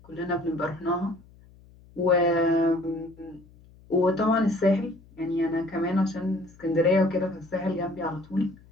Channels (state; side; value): noise; left; hum, 25 dB below the sound